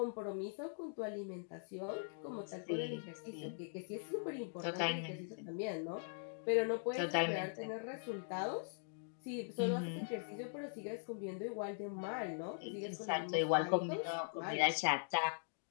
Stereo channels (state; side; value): silent; right; digital silence